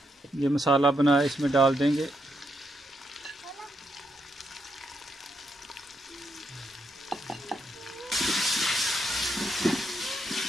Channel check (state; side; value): normal; both; correlation 0.79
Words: ये मसाला बनाया इसमें डाल देंगे।